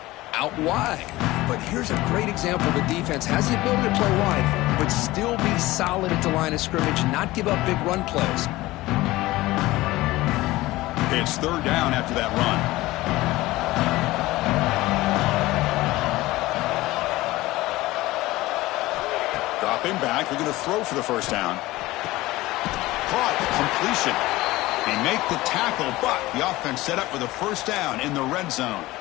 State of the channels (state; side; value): quieter; right; 18.5 dB